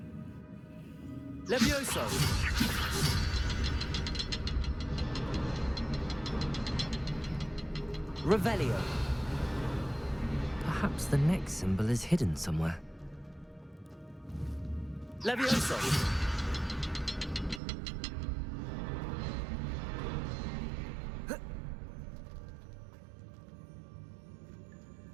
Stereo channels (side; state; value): left; drops out; at 17.6 s